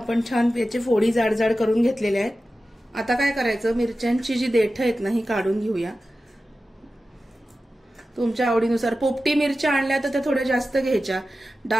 छान याचे फोडी जाड जाड करून घेतलेले आहेत। आता काय करायचं, मिरच्यांची जी देठं आहेत ना ही काढून घेऊया तुमच्या आवडीनुसार। पोपटी मिरच्या आणल्या तर त्या थोड्या जास्त घ्यायच्या,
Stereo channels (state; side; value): normal; both; correlation 0.94